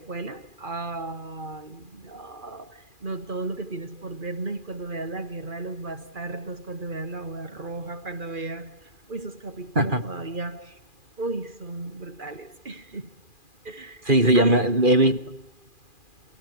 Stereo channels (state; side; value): late; left; 2.4 ms